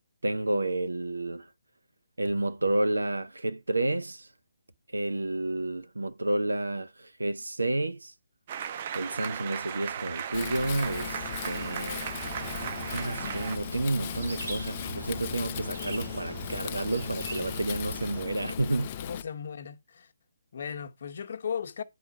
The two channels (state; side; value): inverted; both; correlation -0.88